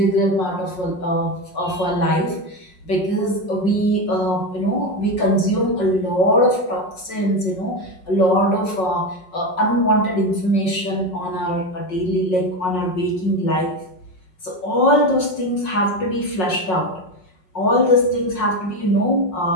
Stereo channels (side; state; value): right; late; 5.5 ms